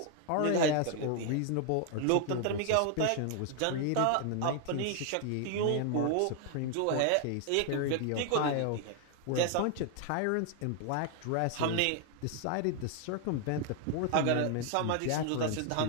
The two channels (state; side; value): different; both; correlation 0.00